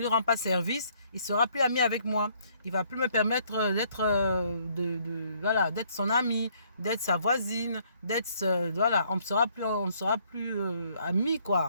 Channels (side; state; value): both; inverted; correlation -0.66